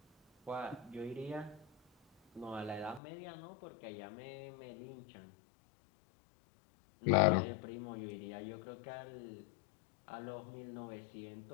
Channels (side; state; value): right; drops out; at 3.0 s